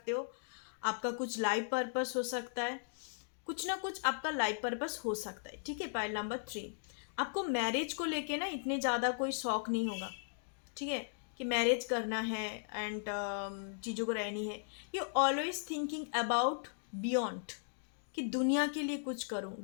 हो। आपका कुछ लाइफ पर्पस हो सकता है, कुछ ना कुछ आपका लाइफ पर्पस हो सकता है, ठीक है। पाइल नंबर 3 आपको मैरिज को लेके ना इतने ज़्यादा कोई शौक नहीं होगा, ठीक है, कि मैरिज करना है एंड चीज़ों को रहनी है। You always thinking about beyond, कि दुनिया के लिए कुछ करूं,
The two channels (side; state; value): right; silent; digital silence